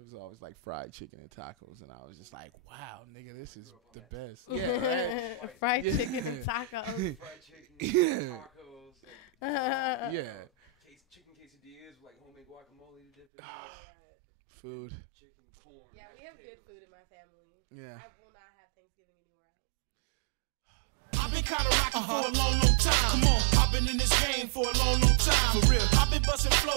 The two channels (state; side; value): drops out; left; at 13.2 s